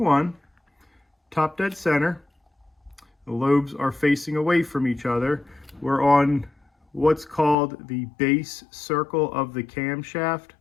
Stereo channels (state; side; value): drops out; right; at 7.6 s